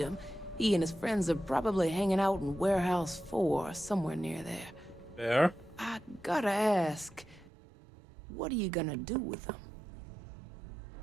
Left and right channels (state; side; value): drops out; left; at 7.5 s